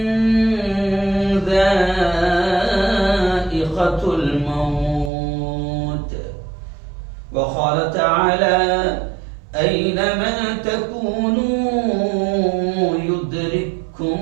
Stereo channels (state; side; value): drops out; left; at 5.1 s